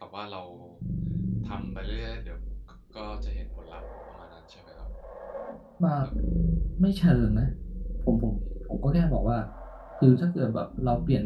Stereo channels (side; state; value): both; identical; correlation 1.00